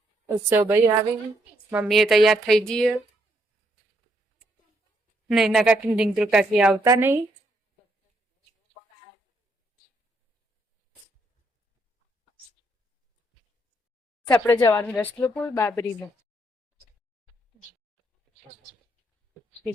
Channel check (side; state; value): both; normal; correlation 0.74